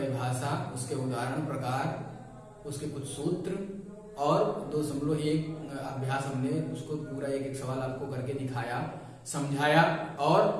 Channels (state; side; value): identical; both; correlation 1.00